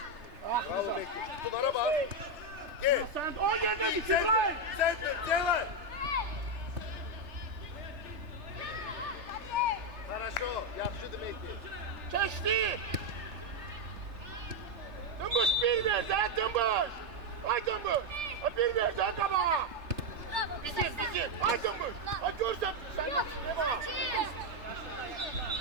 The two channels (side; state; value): left; late; 3.3 ms